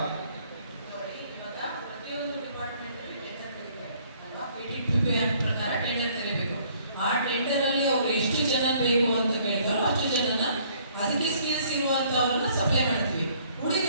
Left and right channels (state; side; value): inverted; both; correlation -0.61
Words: ಪ್ರಕಾರ ಟೆಂಡರ್ ಕರೀಬೇಕು. ಆ ಟೆಂಡರ್ ಅಲ್ಲಿ ಅವ್ರು ಎಷ್ಟು ಜನ ಬೇಕು ಅಂತ ಕೇಳ್ತಾರೋ ಅಷ್ಟು ಜನನ ಅದಕ್ಕೆ ಸ್ಕಿಲ್ಸ್ ಇರುವಂತವ್ರನ್ನ ಸಪ್ಲೈ ಮಾಡ್ತೀವಿ.